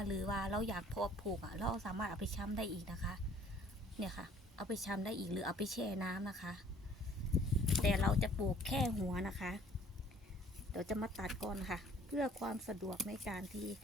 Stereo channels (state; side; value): normal; both; correlation 0.56